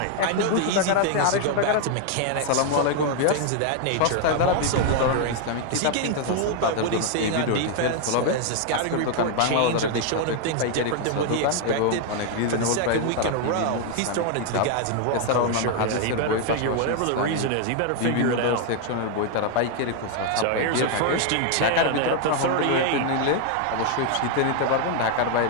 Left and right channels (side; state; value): both; different; correlation 0.00